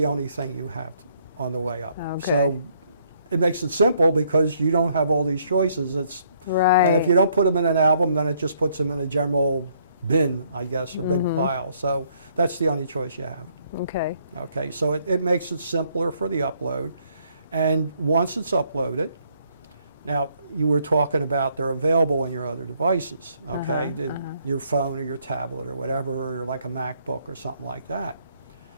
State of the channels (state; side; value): inverted; both; correlation -0.68